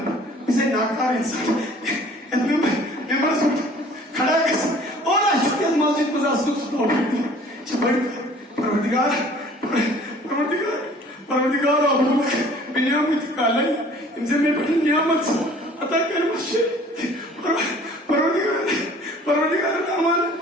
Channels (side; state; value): both; normal; correlation 0.51